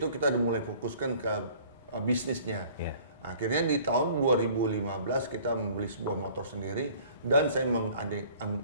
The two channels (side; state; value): both; inverted; correlation -0.52